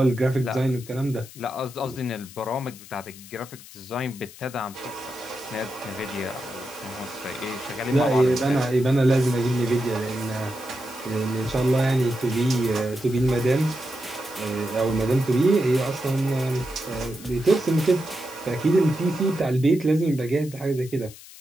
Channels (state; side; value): noise; left; hiss, 18 dB below the sound